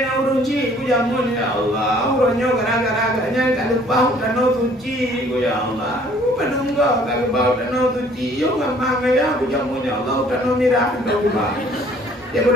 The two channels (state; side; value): normal; both; correlation 0.57